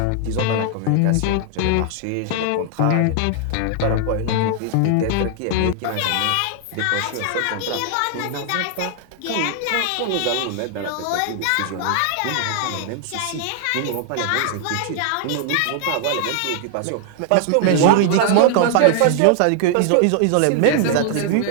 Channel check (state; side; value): different; both; correlation 0.00